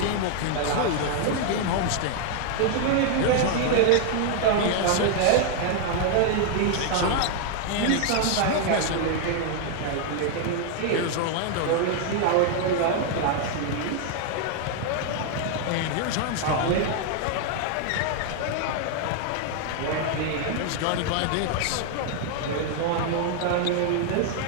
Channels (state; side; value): different; both; correlation 0.00